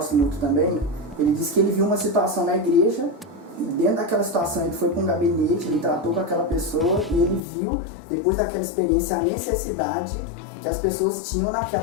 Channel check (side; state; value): right; drops out; at 7.4 s